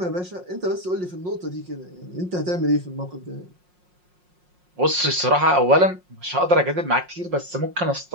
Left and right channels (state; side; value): late; left; 5.6 ms